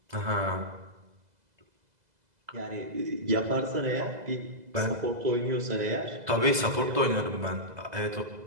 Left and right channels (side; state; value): left; late; 2.0 ms